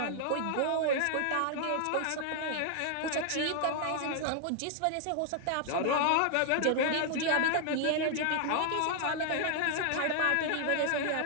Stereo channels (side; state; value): both; different; correlation 0.00